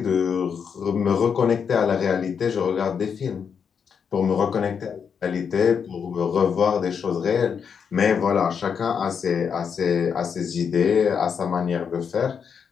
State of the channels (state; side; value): quieter; right; 6.8 dB